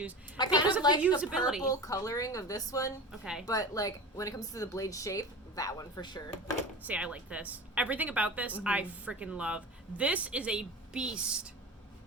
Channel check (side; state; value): both; normal; correlation 0.31